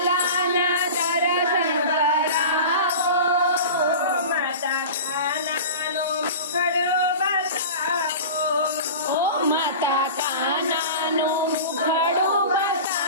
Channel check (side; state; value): both; inverted; correlation -0.34